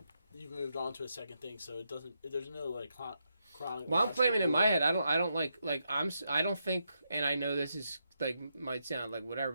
you've moved on to a second thing, so it doesn't. There's no like chronic. Well, I'm claiming in my head. I don't like I don't think, and I know this is like might sound like whatever,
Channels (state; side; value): inverted; both; correlation -0.83